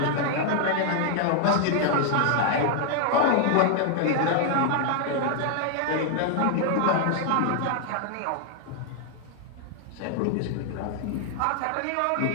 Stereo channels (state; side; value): different; both; correlation 0.00